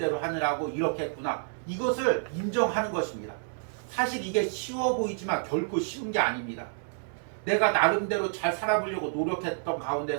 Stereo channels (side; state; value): left; silent; digital silence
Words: 하느라고 이렇게 했구나. 이것을 인정하는 것입니다. 사실 이게 쉬워 보이지만 결코 쉬운 게 아닙니다. 내가 나름대로 잘 살아보려고 노력했던